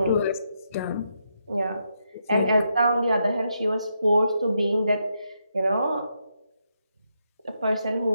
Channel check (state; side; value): inverted; both; correlation -0.81